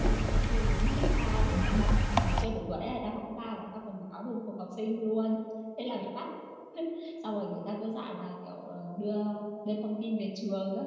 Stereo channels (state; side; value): identical; both; correlation 1.00